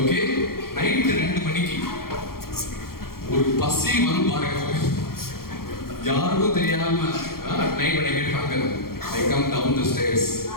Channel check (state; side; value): late; right; 0.93 ms